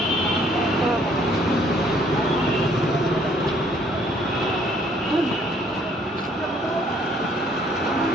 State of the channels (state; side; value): normal; both; correlation 0.63